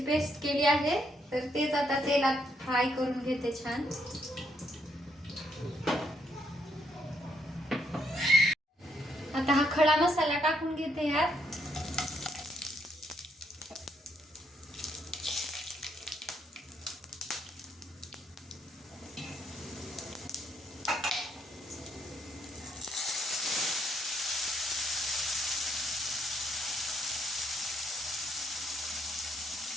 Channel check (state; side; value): normal; both; correlation 0.74